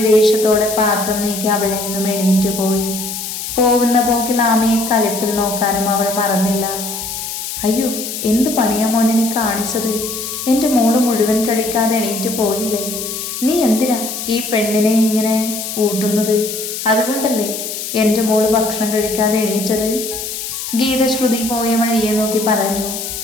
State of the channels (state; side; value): noise; left; hiss, 6 dB below the sound